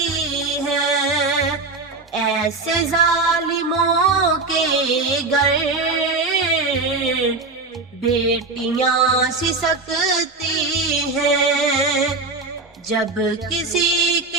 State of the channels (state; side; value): quieter; left; 3.7 dB